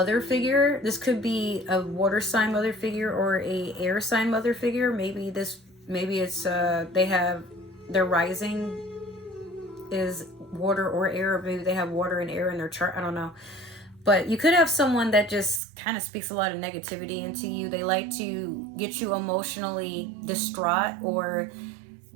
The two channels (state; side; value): drops out; left; at 15.6 s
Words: figure. This could be a water sign mother figure or a air sign mother figure. Maybe it's they have their rising is water or air, or maybe they have water and air in their chart. I don't know. But you could have someone that just kind of speaks a lot of negativity into you. They like to get you emotionally distraught, or